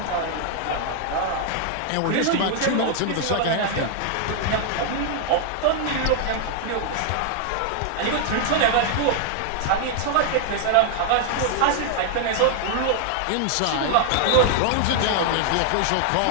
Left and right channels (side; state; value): both; different; correlation 0.00